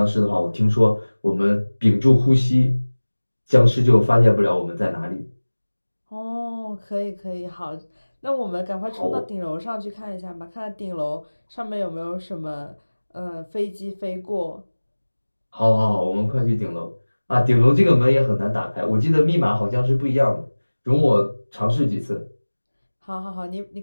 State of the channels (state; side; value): inverted; both; correlation -1.00